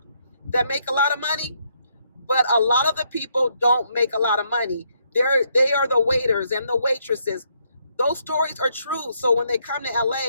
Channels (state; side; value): inverted; both; correlation -0.73